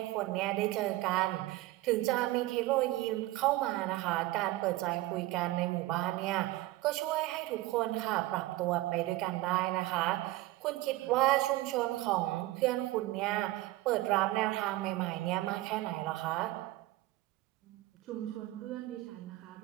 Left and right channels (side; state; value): left; quieter; 18.0 dB